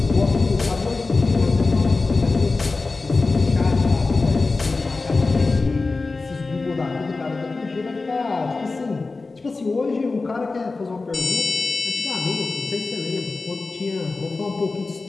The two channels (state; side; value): quieter; right; 3.7 dB